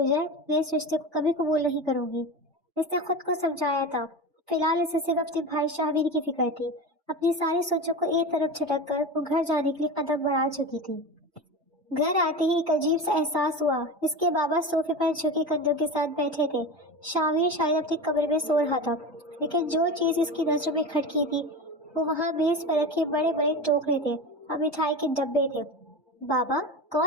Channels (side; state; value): both; normal; correlation 0.26